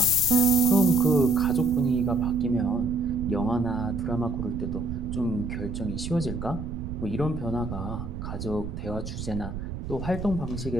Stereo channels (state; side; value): noise; right; rumble, 7 dB below the sound